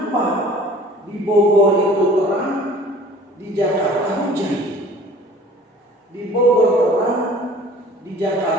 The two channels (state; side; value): normal; both; correlation 0.48